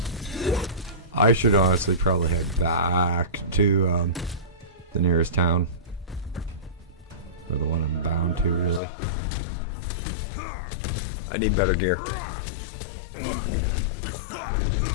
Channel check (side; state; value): right; drops out; at 8.8 s